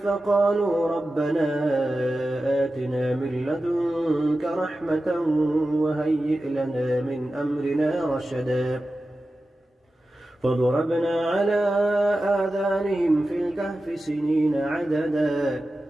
فقالوا ربنا آتنا من لدنك رحمة وهيئ لنا من أمرنا رشدا فضربنا على آذانهم في الكهف سنين عددا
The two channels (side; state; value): both; normal; correlation 0.93